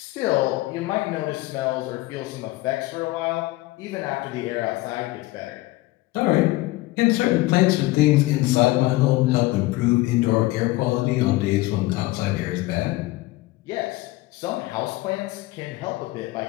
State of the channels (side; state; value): right; quieter; 19.1 dB